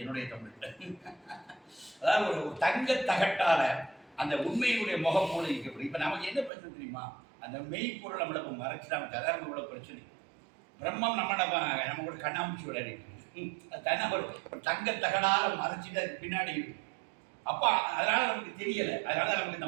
என்னுடைய தமிழ் அதாவது ஒரு தங்க தகட்டால அந்த உண்மையினுடைய முகம் போல இருக்கப்படும். இப்போ நமக்கு என்ன பிரச்சனை தெரியுமா? அந்த மெய்ப்பொருள் நம்மளை மறைச்சிடாம ததாரண உள்ள பிரச்சனை. பிரம்மம் நம்ம கூட கண்ணாமூச்சி விளையாடிட்டு தன்னை ஒரு தங்க தகடால மறைச்சிட்டு அதுக்கு பின்னாடி இருக்கு. அப்போ அதனால நமக்கு தெரியல. அதனால நமக்கு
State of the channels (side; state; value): left; drops out; at 6.5 s